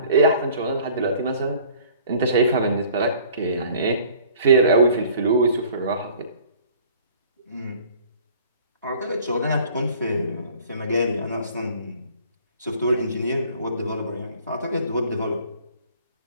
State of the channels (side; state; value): both; inverted; correlation -0.52